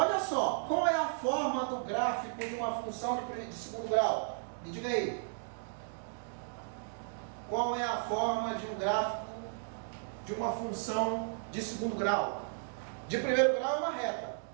só, qual é a forma do gráfico de uma função de segundo grau? Me diga aí. Qual é a forma de um gráfico de uma função de segundo grau? De primeiro grau é uma reta,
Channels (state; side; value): silent; left; digital silence